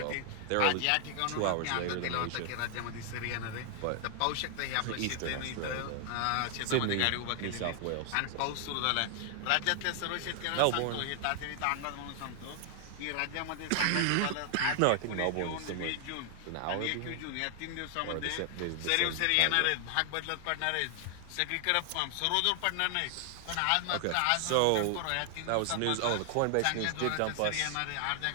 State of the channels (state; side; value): different; both; correlation 0.00